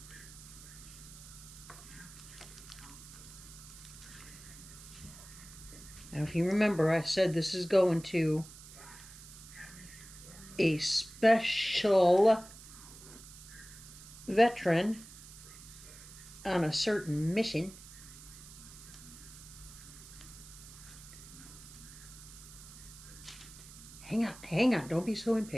Now, if you remember, I said this is going to a special veteran on a certain mission. Hang on, don't be so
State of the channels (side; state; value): right; noise; hiss, 17 dB below the sound